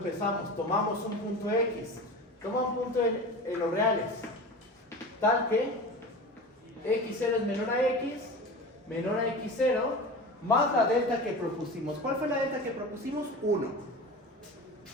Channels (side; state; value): both; normal; correlation 0.32